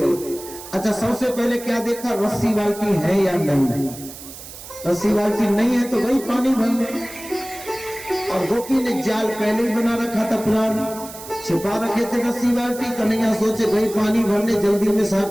अच्छा, सबसे पहले क्या देखा, रस्सी बाल्टी है या नहीं। रस्सी बाल्टी नहीं है तो वही पानी भरने। और गोपी ने जाल पहले ही बना रखा था, प्लान छिपा रखे थे रस्सी बाल्टी। कन्हैया सोचे भाई पानी भरने, जल्दी में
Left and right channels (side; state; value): right; noise; hiss, 14 dB below the sound